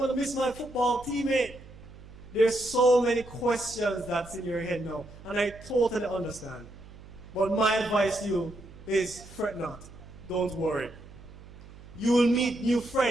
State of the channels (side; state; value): right; noise; hum, 19 dB below the sound